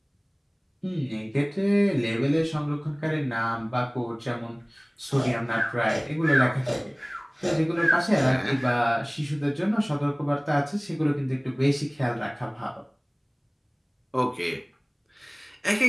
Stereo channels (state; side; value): identical; both; correlation 1.00